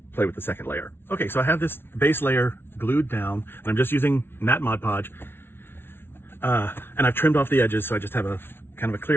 play with the second layer. Okay, so I have this base layer glued down and I'm just using matte Mod Podge. And I've trimmed off the edges, so I just have a kind of a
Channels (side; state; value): right; late; 0.11 ms